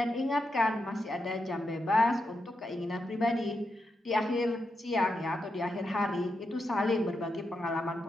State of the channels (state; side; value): normal; both; correlation 0.85